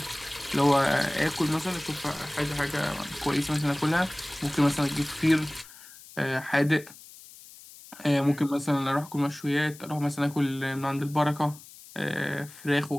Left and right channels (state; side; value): noise; left; hiss, 19 dB below the sound